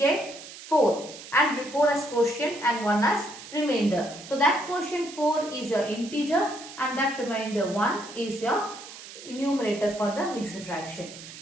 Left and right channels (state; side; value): noise; right; hiss, 15 dB below the sound